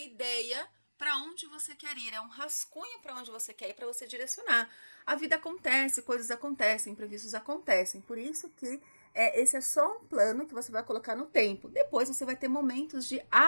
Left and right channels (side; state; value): both; inverted; correlation -1.00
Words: para onde você quer ir, é um rascunho para onde você quer ir, para você direcionar. A vida acontece, coisas acontecem, imprevistos acontecem, por isso que esse é só um plano que você vai colocar no tempo. Depois você vai ter momentos de